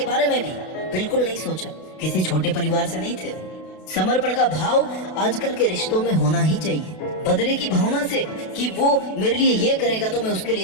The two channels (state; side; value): late; right; 32 ms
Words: बारे में भी बिल्कुल नहीं सोचा। किसी छोटे परिवार से नहीं थे। समर्पण का भाव आजकल के रिश्तों में होना ही चाहिए। बदले की भावना से कि वो मेरे लिए ये करेगा तो मैं उसके